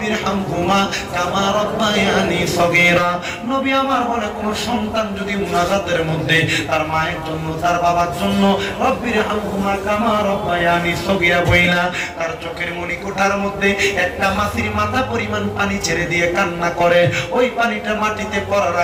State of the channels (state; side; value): identical; both; correlation 1.00